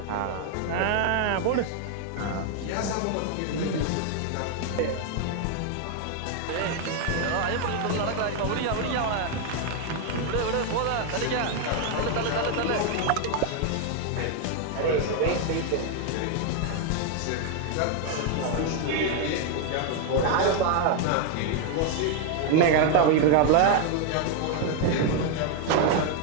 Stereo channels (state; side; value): different; both; correlation 0.01